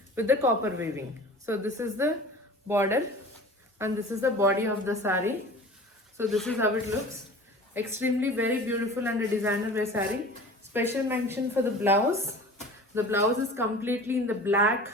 with the copper weaving. So this is the border and this is the body of the sari. So this is how it looks. Extremely very beautiful and a designer wear saree. Special mention for the blouse. The blouse is completely in the black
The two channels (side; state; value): both; normal; correlation 0.40